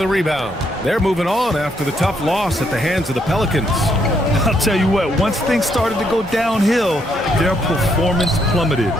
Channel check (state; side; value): normal; both; correlation 0.74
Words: a rebound. They're moving on after the tough loss at the hands of the Pelicans. I'll tell you what, once things started to go downhill, their performance plummeted.